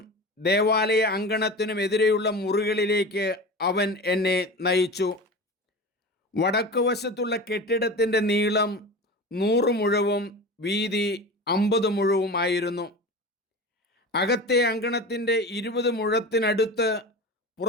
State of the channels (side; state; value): both; normal; correlation 0.31